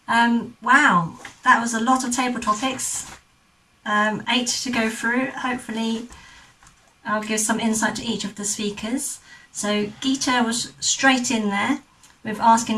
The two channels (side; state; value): both; identical; correlation 1.00